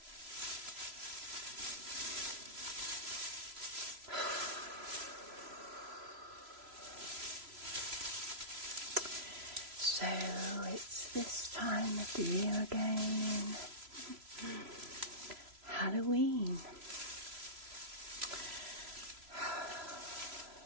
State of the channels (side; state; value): left; late; 3.0 ms